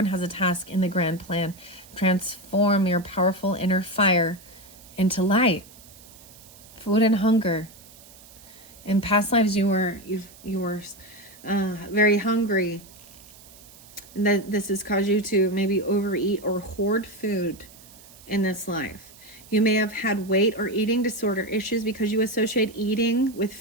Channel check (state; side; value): noise; right; hiss, 22 dB below the sound